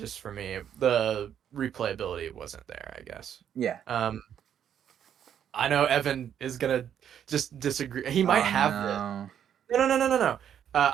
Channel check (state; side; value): quieter; left; 9.3 dB